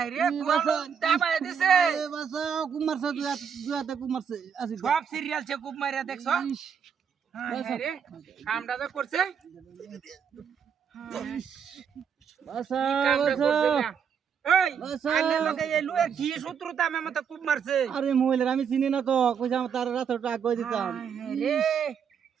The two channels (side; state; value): left; quieter; 7.3 dB